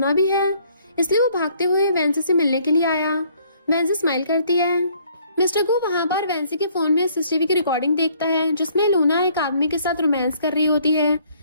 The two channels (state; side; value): inverted; both; correlation -0.62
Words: भी है, इसलिए वो भागते हुए वैंसी से मिलने के लिए आया। वैंसी स्माइल करती है। मिस्टर गु वहाँ पर वैंसी के फोन में सीसीटीवी की रिकॉर्डिंग देखता है जिसमें लूना एक आदमी के साथ रोमांस कर रही होती है